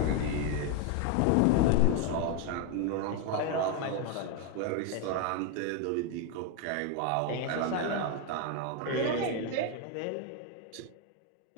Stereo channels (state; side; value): different; both; correlation 0.01